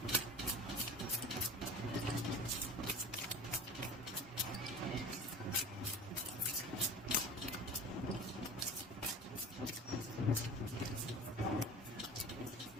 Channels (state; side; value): normal; both; correlation 0.37